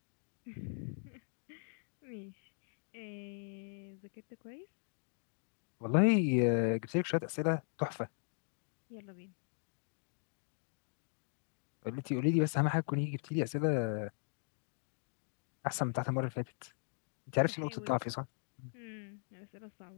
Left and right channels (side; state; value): right; silent; digital silence